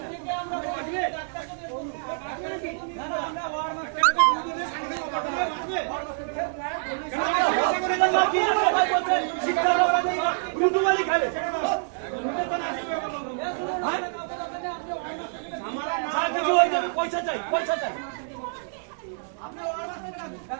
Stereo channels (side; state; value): left; silent; digital silence